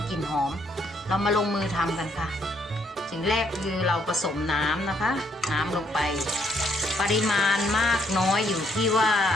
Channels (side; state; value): both; normal; correlation 0.70